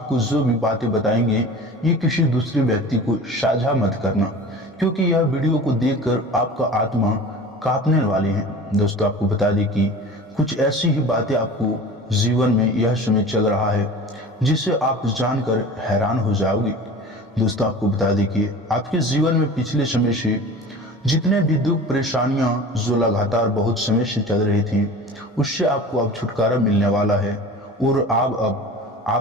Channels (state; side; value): normal; both; correlation 0.38